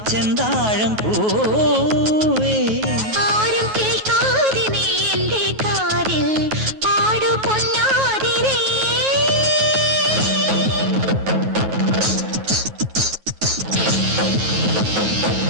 ചെന്താഴം പൂവേ. ആരും കേൾക്കാതെ നീ എന്റെ കാതിൽ പാടു പൊന്നാതിരേ.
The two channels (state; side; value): late; left; 9.3 ms